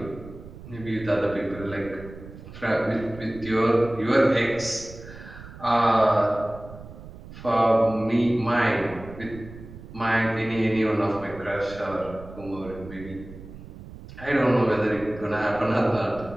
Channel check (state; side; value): noise; right; rumble, 16 dB below the sound